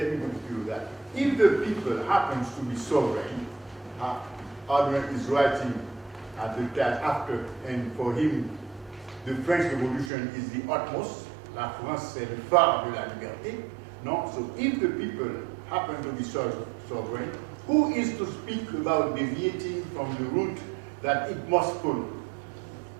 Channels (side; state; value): left; drops out; at 10.1 s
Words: me give you that. If the people happens to be sovereign, Ardouin is writing at the time after, and for him, the French Revolution is the utmost. La France, c'est le phare de la liberté. No? So if the people happen to be sovereign, who is to speak about deviating from the route that it must follow?